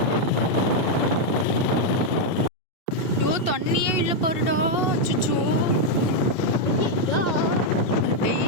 ஐயோ தண்ணியே இல்லை பாருடா. அச்சோ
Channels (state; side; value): late; right; 2.6 ms